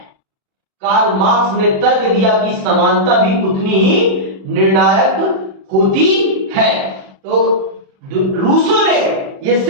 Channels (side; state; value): left; late; 37 ms